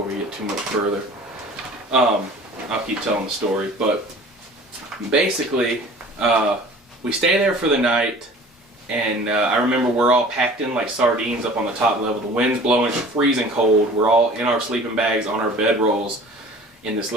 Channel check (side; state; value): both; normal; correlation 0.45